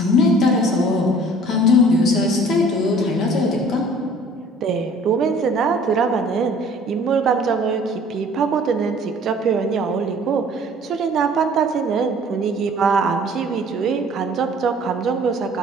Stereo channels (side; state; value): both; normal; correlation 0.52